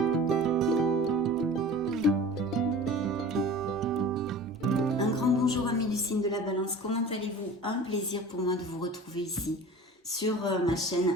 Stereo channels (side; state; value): both; normal; correlation 0.39